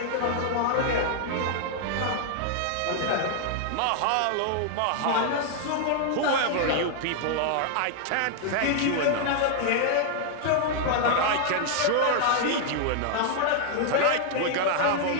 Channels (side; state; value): both; different; correlation 0.00